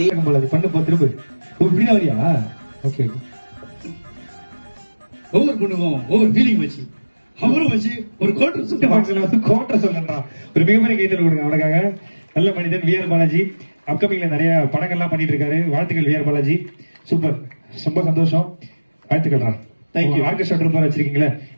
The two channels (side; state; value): both; inverted; correlation -1.00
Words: பண்ண போ திரும்ப. இப்படிதான் வரியா? ஓகே. ஒவ்வொரு பொண்ணுக்கும் ஒவ்வொரு ஃபீலிங் வச்சு அவரும் வச்சு ஒரு கோட்டர் சொல்லுறா. ஒரு மிகப்பெரிய கைத்தல் கொடுங்க அவனுக்காக. நல்ல மனிதன் வி ஆர் பாலாஜி. அப்கமிங்ல நிறைய படங்கள்லாம் பண்ணிட்டு இருக்காரு. வாழ்த்துக்கள் வி ஆர் பாலாஜி. சூப்பர், ரொம்ப சந்தோஷம். வாழ்த்துக்கள்ரா. தேங்க்யூ. ஆர்கெஸ்ட்ரா ட்ரூப்பர் வச்சிருக்கீங்களே